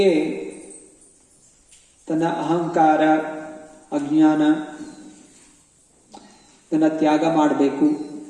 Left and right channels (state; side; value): identical; both; correlation 1.00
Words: ತನ್ನ ಅಹಂಕಾರ, ಅಜ್ಞಾನ ಇದನ್ನು ತ್ಯಾಗ ಮಾಡಬೇಕು,